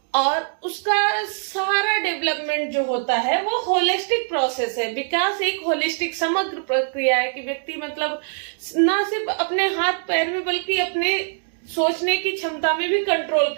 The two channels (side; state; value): left; silent; 64 dB below the other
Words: और उसका सारा डेवलपमेंट जो होता है वो होलिस्टिक प्रोसेस है। विकास एक होलिस्टिक समग्र प्रक्रिया है कि व्यक्ति मतलब ना सिर्फ अपने हाथ पैर में बल्कि अपने सोचने की क्षमता में भी कंट्रोल